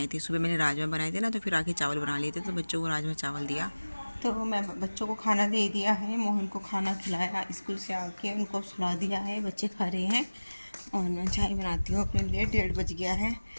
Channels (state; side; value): inverted; both; correlation -1.00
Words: थे सुबह, मैंने राजमा बनाए थे ना, तो फिर आके चावल बना लिए थे, तो बच्चों को राजमा चावल दिया। तो मैं बच्चों को खाना दे दिया है, मोहन को खाना खिलाया, स्कूल से आके उनको सुला दिया है, बच्चे खा रहे हैं। और मैं चाय बनाती हूँ अपने लिए। 1:30 बज गया है,